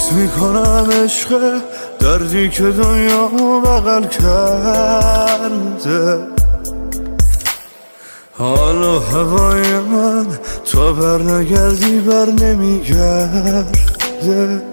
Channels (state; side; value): inverted; both; correlation -1.00